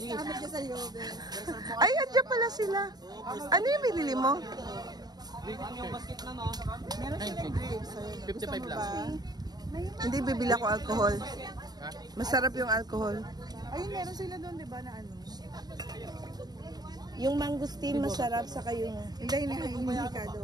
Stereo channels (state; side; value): late; left; 0.19 ms